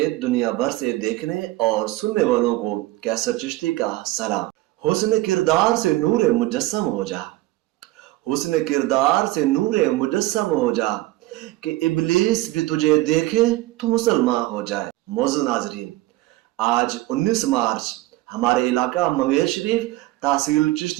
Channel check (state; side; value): quieter; left; 17.8 dB